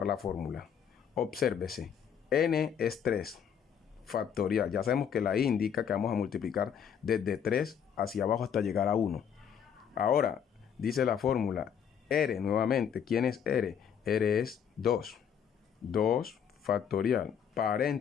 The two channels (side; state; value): right; quieter; 8.0 dB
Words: la fórmula. Obsérvese. N es 3. Factorial. Ya sabemos que la I indica que vamos a multiplicar desde 3 hacia abajo hasta llegar a 1. Ahora, dice la fórmula, R nuevamente. ¿Quién es R? R es 2. 2 factorial,